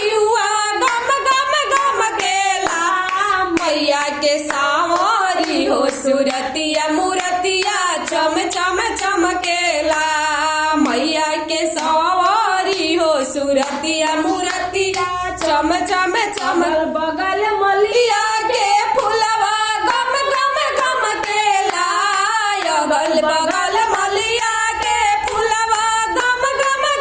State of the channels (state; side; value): identical; both; correlation 1.00